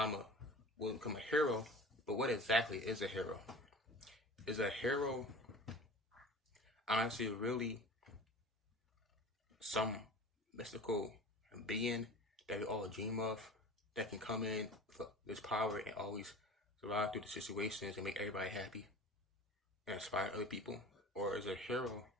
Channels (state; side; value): normal; both; correlation 0.39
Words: will become a hero, but what exactly is a hero? Is a hero honestly really some mystical being that we all dream of that can come in with this power and always survive through the situations and make everybody happy and inspire other people? Or is a hero